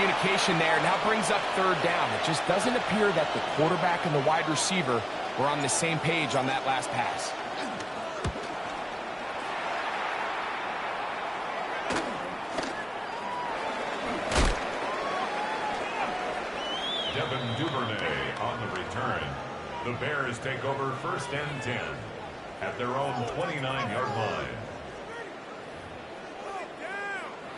there. Now brings up 3rd down. It just doesn't appear that the quarterback and the wide receiver were on the same page on that last pass. Devin Duvernay on the return. The Bears take over 1st and 10 at their own 29-yard line.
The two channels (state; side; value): identical; both; correlation 1.00